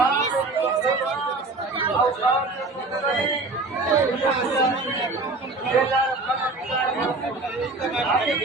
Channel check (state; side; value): quieter; left; 3.3 dB